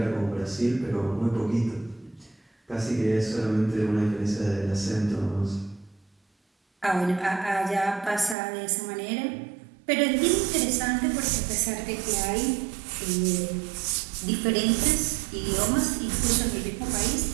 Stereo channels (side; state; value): left; drops out; at 8.3 s